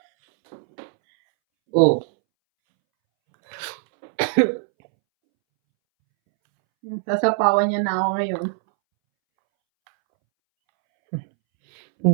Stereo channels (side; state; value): left; silent; 65 dB below the other